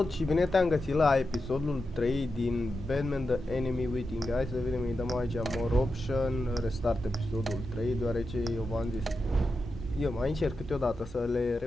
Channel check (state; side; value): normal; both; correlation 0.89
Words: și bine te-am găsit la episodul 3 din Batman The Enemy Waiting. Hai să vedem, îi dăm aici More Option, restart episodul 3, deoarece eu v-am zis, eu mai încerc câteodată să le